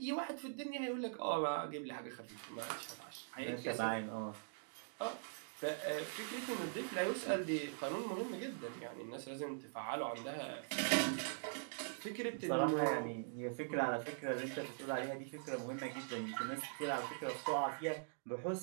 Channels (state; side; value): silent; left; digital silence